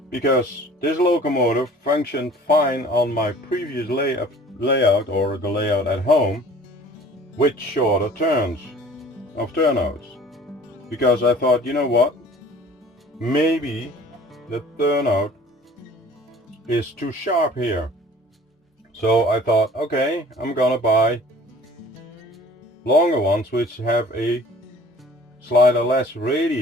because this locomotive functioned fine on my previous layout, or the layout at home, with shorter turnouts. Because I thought, you know what, maybe the turnout is too sharp here. So I thought, okay, I'm gonna buy longer ones which have a slightly less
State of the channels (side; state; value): both; normal; correlation 0.48